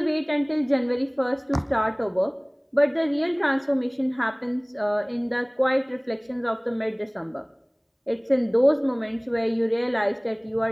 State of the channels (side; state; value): both; identical; correlation 1.00